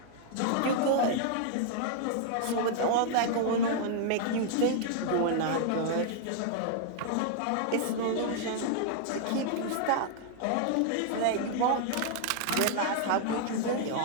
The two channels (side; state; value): both; different; correlation -0.01